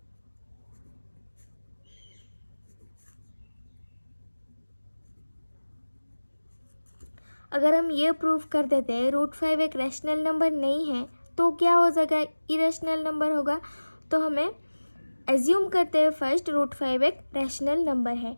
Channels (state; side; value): inverted; both; correlation -1.00